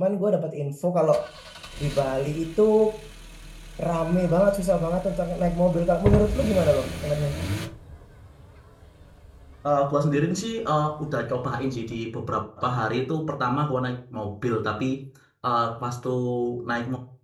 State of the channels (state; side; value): identical; both; correlation 1.00